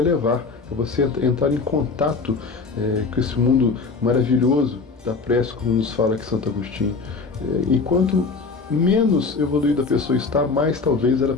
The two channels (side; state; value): right; quieter; 4.4 dB